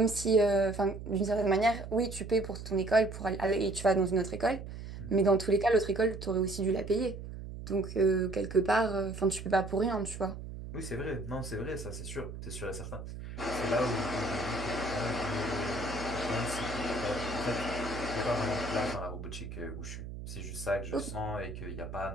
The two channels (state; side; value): noise; right; hum, 10 dB below the sound